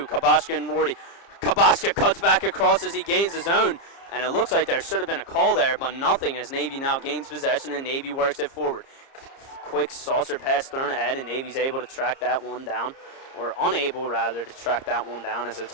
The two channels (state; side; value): late; right; 30 ms